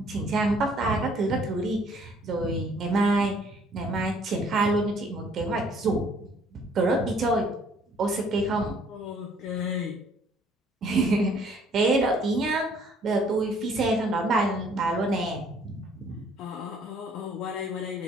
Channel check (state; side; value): normal; both; correlation 0.60